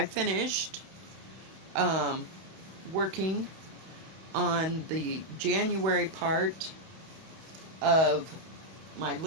finished working on the January part of my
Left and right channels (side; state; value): left; late; 31 ms